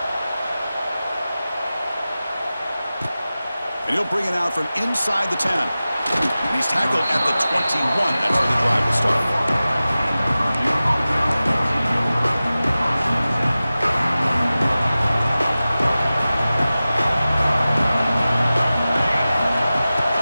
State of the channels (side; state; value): both; inverted; correlation -0.96